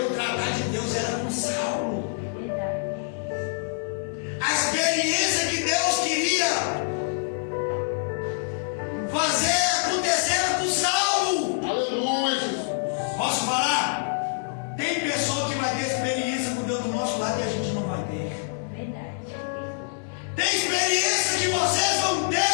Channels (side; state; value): right; silent; 61 dB below the other